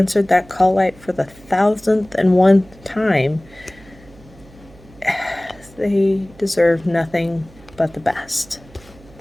that call light for the 1,000th time, they deserve nothing but the best.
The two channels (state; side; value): noise; right; hum, 24 dB below the sound